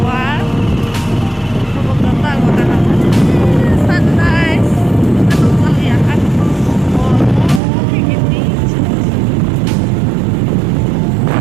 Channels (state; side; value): drops out; left; at 7.6 s